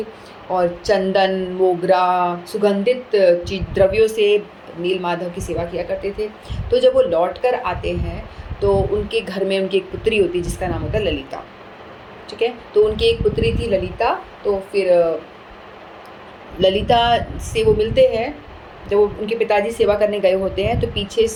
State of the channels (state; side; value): identical; both; correlation 1.00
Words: और चंदन, मोगरा, सुगंधित द्रव्यों से नीलमाधव की सेवा किया करते थे। तो जब वो लौट कर आते हैं तो उनके घर में उनकी एक पुत्री होती है जिसका नाम होता है ललिता, ठीक है। तो उनकी एक पुत्री थी ललिता। तो फिर ललिता से वो मिलते हैं, जब वो उनके पिताजी सेवा करने गए होते हैं तो पीछे